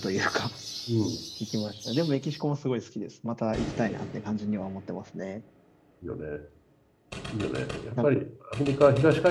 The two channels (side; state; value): both; identical; correlation 1.00